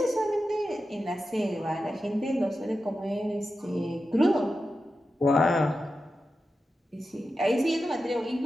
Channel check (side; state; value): both; normal; correlation 0.91